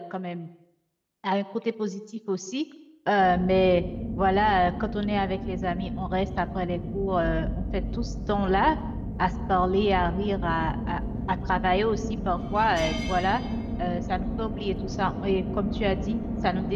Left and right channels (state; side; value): identical; both; correlation 1.00